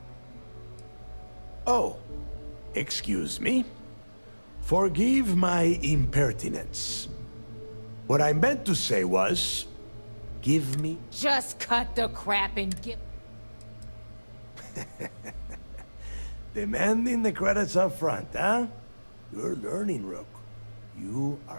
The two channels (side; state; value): both; inverted; correlation -1.00